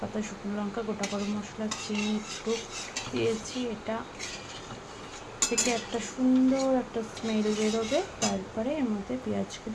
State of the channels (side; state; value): both; identical; correlation 1.00